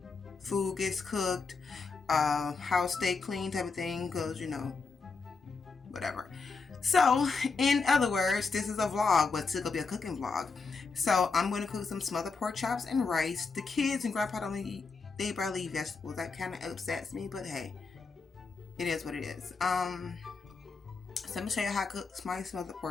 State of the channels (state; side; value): quieter; right; 4.5 dB